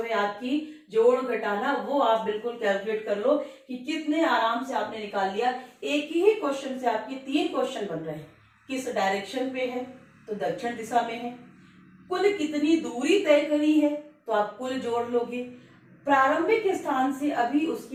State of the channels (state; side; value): identical; both; correlation 1.00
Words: है आपकी जोड़ घटाना, वो आप बिल्कुल कैलकुलेट कर लो कि कितने आराम से आपने निकाल लिया। एक ही क्वेश्चन से आपके 3 क्वेश्चन बन रहे हैं। किस डायरेक्शन पे है, तो दक्षिण दिशा में है। कुल कितनी दूरी तय करी है, तो आप कुल जोड़ लोगे। प्रारंभिक स्थान से अभी